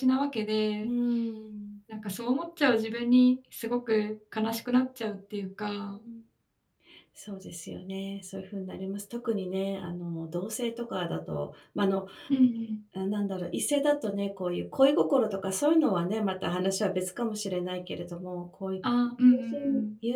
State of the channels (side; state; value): both; identical; correlation 1.00